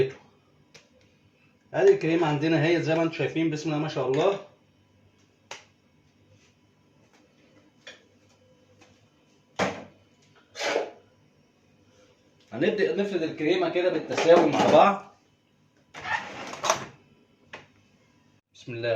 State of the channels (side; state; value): both; identical; correlation 1.00